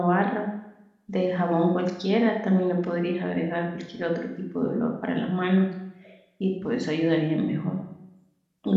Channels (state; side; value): identical; both; correlation 1.00